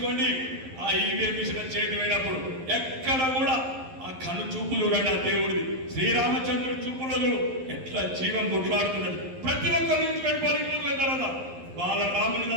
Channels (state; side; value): late; left; 11 ms